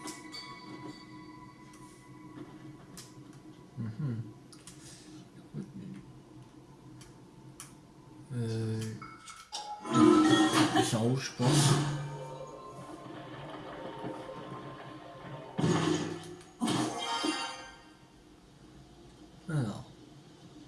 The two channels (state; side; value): identical; both; correlation 1.00